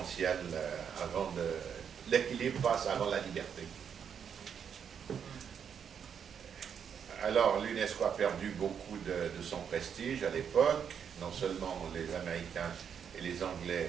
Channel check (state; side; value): quieter; left; 7.6 dB